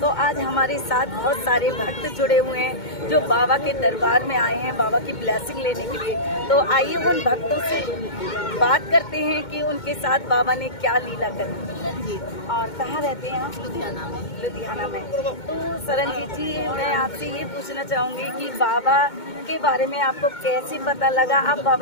आज हमारे साथ बहुत सारे भक्त जुड़े हुए हैं जो बाबा के दरबार में आए हैं बाबा की ब्लेसिंग लेने के लिए। तो आइए उन भक्तों से बात करते हैं कि उनके साथ बाबा ने क्या लीला करी जी। और कहाँ रहते हैं आप? लुधियाना में। तो सरनजीत जी, मैं आपसे ये पूछना चाहूँगी कि बाबा के बारे में आपको कैसे पता लगा, आप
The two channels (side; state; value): right; late; 2.2 ms